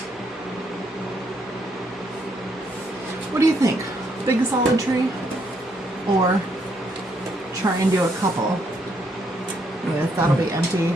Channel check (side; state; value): both; normal; correlation 0.73